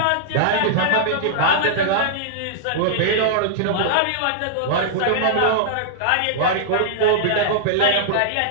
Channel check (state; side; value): different; both; correlation -0.02